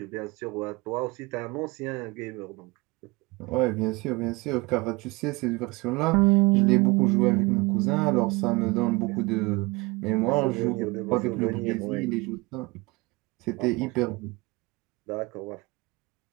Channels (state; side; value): quieter; left; 24.1 dB